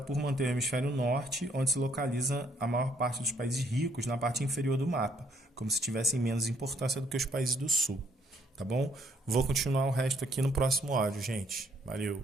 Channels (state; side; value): normal; both; correlation 0.68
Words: por manter o hemisfério norte, onde se localiza a maior parte dos países ricos na parte inferior do mapa, como se tivessem menos importância do que os países do sul. Tá bom? Vou continuar o resto aqui no próximo áudio, gente. Valeu.